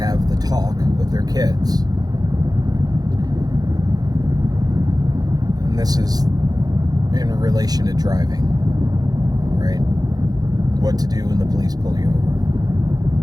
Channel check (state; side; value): late; left; 0.19 ms